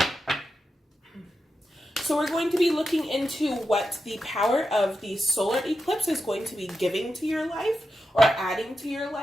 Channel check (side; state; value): both; normal; correlation 0.89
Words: So we're going to be looking into what the power of the solar eclipse is going to be giving to your life or adding to your